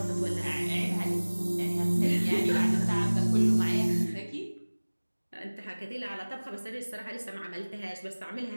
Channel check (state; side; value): inverted; both; correlation -1.00